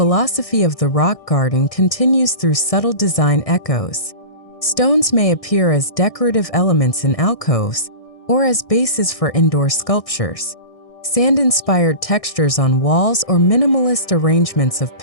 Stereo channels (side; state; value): right; late; 1.6 ms